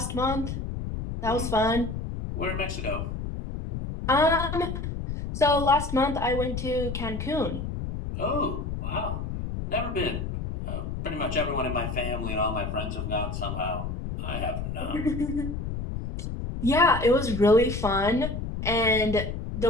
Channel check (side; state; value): left; noise; rumble, 5 dB below the sound